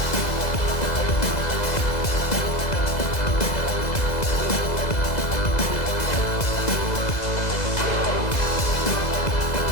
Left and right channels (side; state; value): right; late; 2.0 ms